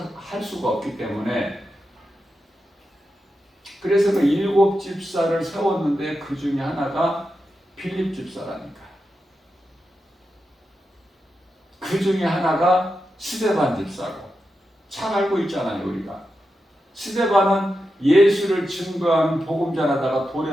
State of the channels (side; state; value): both; normal; correlation 0.89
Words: 할 수가 없기 때문에, 그래서 그 7 집사를 세웠는데 그 중에 하나가 빌립 집사라니까. 그 중에 하나가 스데반 집사고. 잘 알고 있잖아요, 우리가. 스데반은 예수를 증거하는 복음 전하다가